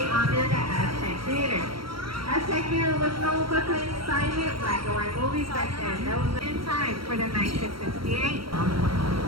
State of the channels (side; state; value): left; late; 0.74 ms